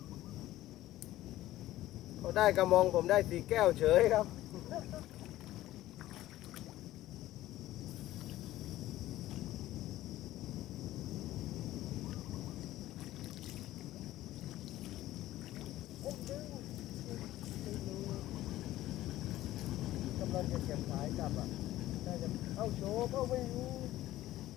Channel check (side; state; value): right; quieter; 15.2 dB